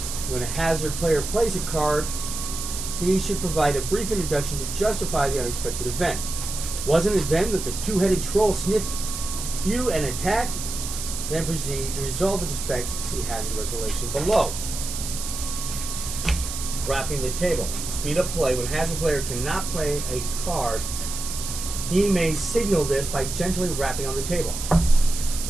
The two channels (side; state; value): right; noise; hiss, 6 dB below the sound